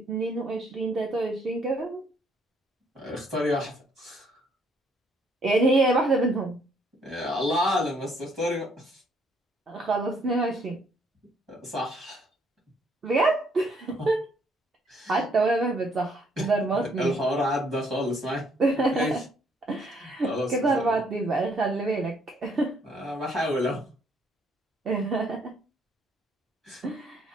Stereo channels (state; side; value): normal; both; correlation 0.67